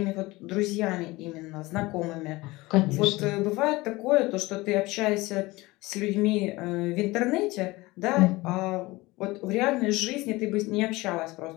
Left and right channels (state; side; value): quieter; right; 21.1 dB